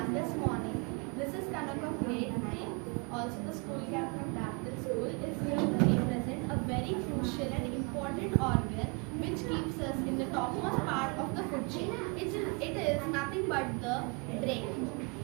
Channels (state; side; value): quieter; left; 32.4 dB